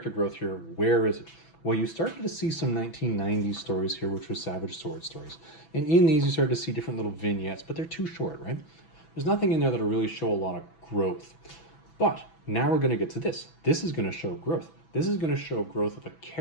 growth here, where is it? Well, you started to see some 1990s stories here, which were Savage Sword stories. And in these, you started to see different little vignettes, but they're too short, right? There's nothing in there that'll really show a lot of growth. But now we're going to get to this. This is going to show growth. This is going to show growth of a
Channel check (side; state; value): right; late; 6.1 ms